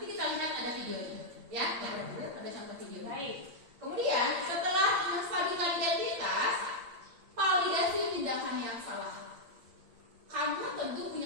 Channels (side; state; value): left; late; 8.6 ms